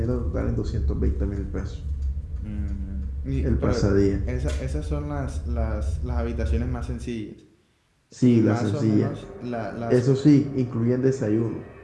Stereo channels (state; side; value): identical; both; correlation 1.00